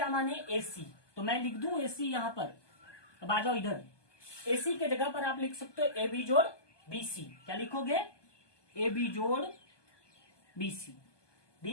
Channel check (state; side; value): late; right; 1.2 ms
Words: माने? AC। तो मैं लिख दूं AC यहां पर। अब आ जाओ इधर, AC के जगह पर आप लिख सकते हो AB जोड़ BC। क्या लिखोगे? AB जोड़ BC।